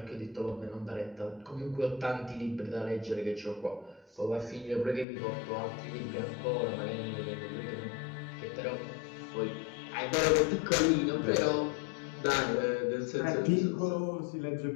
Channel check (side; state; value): right; drops out; at 5.1 s